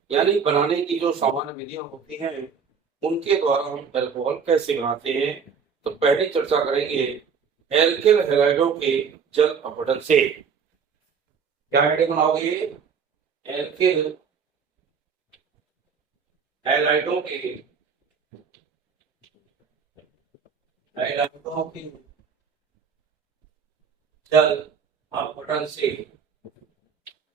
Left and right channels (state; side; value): quieter; left; 6.2 dB